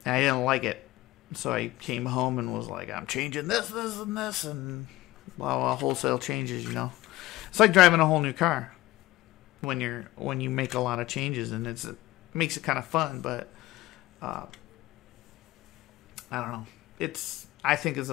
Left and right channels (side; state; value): right; quieter; 17.6 dB